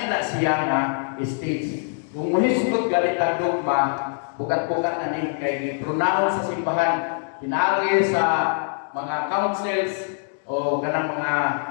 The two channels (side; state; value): right; silent; 63 dB below the other